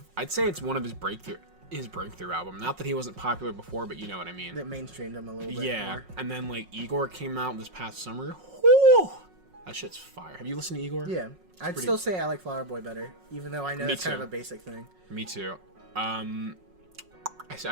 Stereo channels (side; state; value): left; late; 5.5 ms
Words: I'd say it's one of his breakthrough album. Not that he wasn't popular before, but you know what I mean. That mainstreamed him a little bit Yeah, more. and then like Igor came out this past summer. Whew! That shit's fire. Have you listened to Igor? Yeah. I'd pretty- still say I like Flower Boy better, even though I know Me it's kind of too. a basic thing. Me too. I